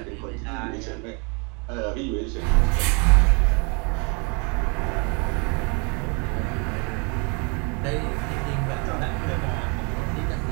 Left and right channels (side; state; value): left; quieter; 33.2 dB